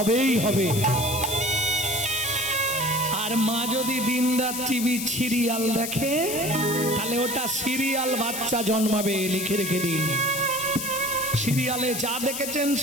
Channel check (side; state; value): left; noise; hiss, 5 dB below the sound